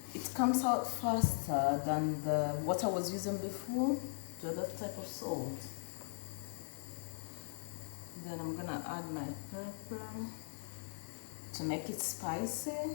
it comes out faster than the what I was using before, the other type of salt. Then I'm gonna add my pepper to make it spicy.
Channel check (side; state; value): right; silent; digital silence